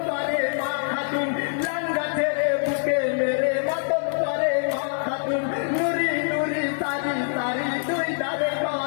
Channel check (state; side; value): silent; right; 62 dB below the other